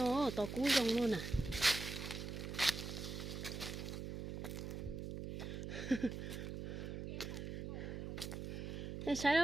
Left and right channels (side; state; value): right; noise; hum, 5 dB below the sound